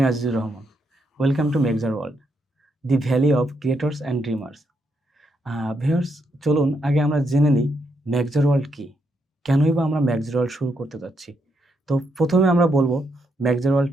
Azizur Rahman. Welcome to Mexar world, the valley of creators and dreamers. Viewers, চলুন আগে আমরা জেনে নিই মেক্সার ওয়ার্ল্ড কী? কেনই বা আমরা মেক্সার ওয়ার্ল্ড শুরু করতে যাচ্ছি? তো প্রথমে আমরা বলব মেক্সার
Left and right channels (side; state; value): both; normal; correlation 0.79